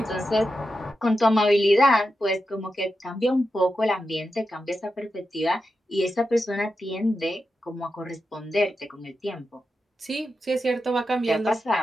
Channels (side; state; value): both; normal; correlation 0.89